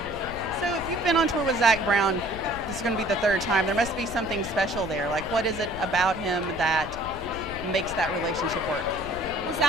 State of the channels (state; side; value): noise; left; rumble, 12 dB below the sound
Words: So if you've been on tour with Zach Brown, this is going to be the 3rd time, there must be something special there. What is it about him that makes that relationship work? Well,